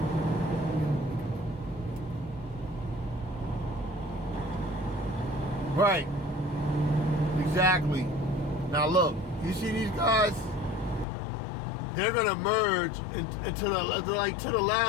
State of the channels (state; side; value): drops out; right; at 11.1 s